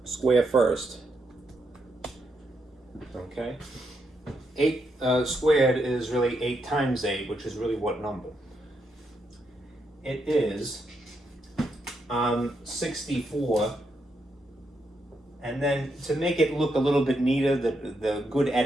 Square first. Okay. 8 squared is really 8 times 8, which is really what number? It is 64. And then to make it look a little bit neater, the good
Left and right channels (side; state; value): both; normal; correlation 0.80